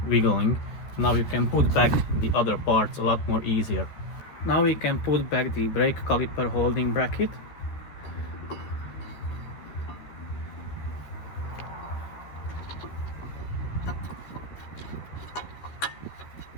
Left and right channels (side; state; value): right; late; 13 ms